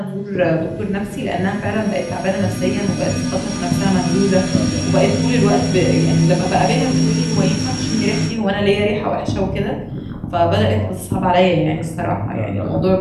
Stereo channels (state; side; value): identical; both; correlation 1.00